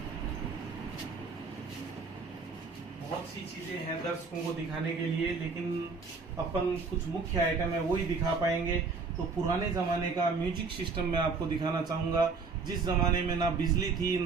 बहुत सी चीजें हैं दर्शकों को दिखाने के लिए, लेकिन अपन कुछ मुख्य आइटम है वही दिखा पाएंगे। तो पुराने जमाने का म्यूजिक सिस्टम मैं आपको दिखाना चाहूंगा। जिस जमाने में ना बिजली थी,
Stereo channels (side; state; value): left; quieter; 4.6 dB